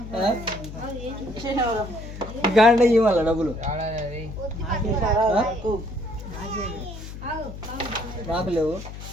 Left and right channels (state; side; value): noise; left; hum, 11 dB below the sound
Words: ఇంకా అంటే ఇవ్వాల డబ్బులు నాకు లేవు.